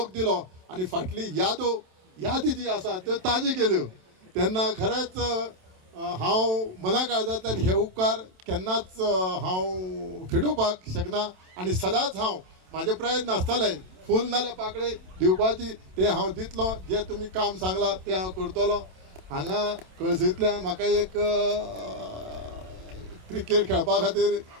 दिलो आणि फाटली यादी जी आसा त्यो ताजी केल्यो तेन्ना खरेंच हांव मना काळजांतल्यान हे उपकार केन्नाच हांव फिडोवपाक शकना आणि सदांच हांव म्हाजे प्रयत्न आसतले फूल नाल्यार पाकळे दिवपाची ते हांव दितलो. जे तुमी काम सांगला ते हांव करतलो. हांगा कळसेंतल्यान म्हाका एक क्रिकेट खेळपा खातीर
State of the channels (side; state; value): left; late; 27 ms